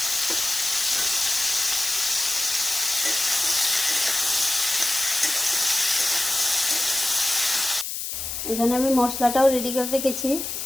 এখানে আমি মশলাটাও রেডি করে রেখেছি।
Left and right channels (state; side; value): noise; left; hiss, 5 dB below the sound